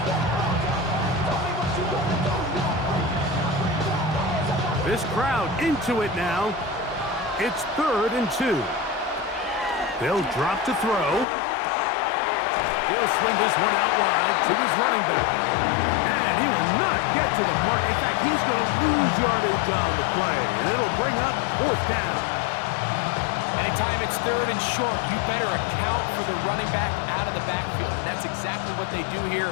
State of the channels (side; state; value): right; drops out; at 11.2 s